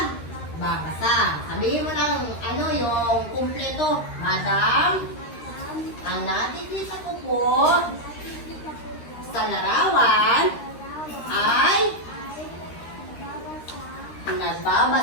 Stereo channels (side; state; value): right; late; 13 ms